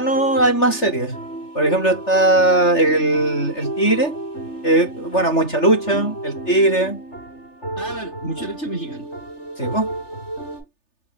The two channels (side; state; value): right; late; 3.4 ms